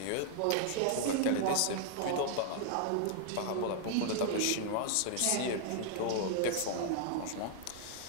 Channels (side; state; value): both; different; correlation 0.00